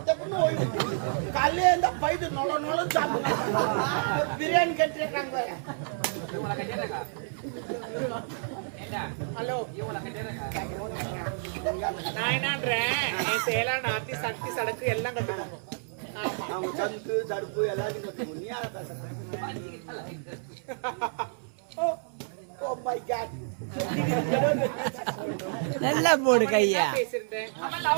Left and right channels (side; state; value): left; silent; 58 dB below the other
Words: தப்புன்னு ஓய்வு. காலையில இருந்தா பைது நொல நொல சாப்பிடுவாங்க. பிரியாணி கட்டிருக்காங்க. ஹலோ நான் என்னன்றேன், என் சேலான ஆத்தி சக்தி சடக்கு எல்லாம் கட்டுவாங்க. ஆமா அவங்க சந்து தடுப்பு எல்லாத்தையும் கட்டுவோம். நீ யார பேசுற? Oh my God. நல்லா போடு கையா. பேசிருந்தேன். அவன்